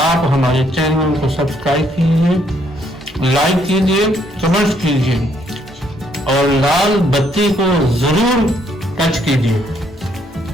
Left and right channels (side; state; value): both; normal; correlation 0.70